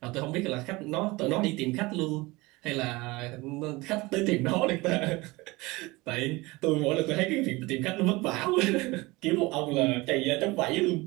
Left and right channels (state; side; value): quieter; left; 22.4 dB